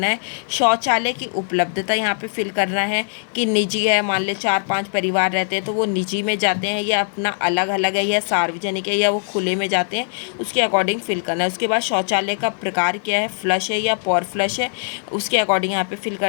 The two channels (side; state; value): right; silent; 65 dB below the other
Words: है। शौचालय की उपलब्धता यहाँ पे फिल करना है कि निजी है, मान ले 4-5 परिवार रहते हैं तो वो निजी में जाते हैं या अपना अलग अलग है या सार्वजनिक है या वो खुले में जाते हैं, उसके अकॉर्डिंग फिल करना है। उसके बाद शौचालय का प्रकार क्या है, फ्लश है या पॉर फ्लश है, उसके अकॉर्डिंग यहाँ पे फिल